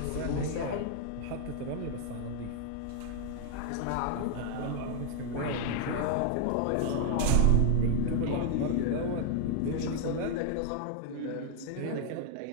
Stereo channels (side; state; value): both; different; correlation 0.01